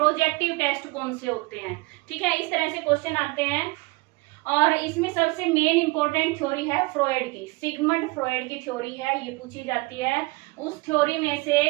टेस्ट कौन से होते हैं। ठीक है, इस तरह से क्वेश्चन आते हैं। और इसमें सबसे मेन इंपॉर्टेंट थ्योरी है फ्रॉयड की, सिगमंड फ्रॉयड की थ्योरी है, ये पूछी जाती है। उस थ्योरी में से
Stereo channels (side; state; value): left; quieter; 24.3 dB